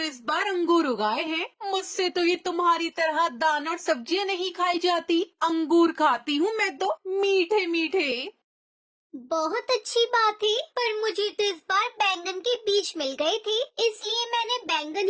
इस बार अंगूर उगाए हैं। मुझसे तो ये तुम्हारी तरह दाना और सब्जियां नहीं खाई जाती। अंगूर खाती हूँ मैं तो, मीठे मीठे। बहुत अच्छी बात है, पर मुझे तो इस बार बैंगन के बीज मिल गए थे, इसलिए मैंने बैंगन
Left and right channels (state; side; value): identical; both; correlation 1.00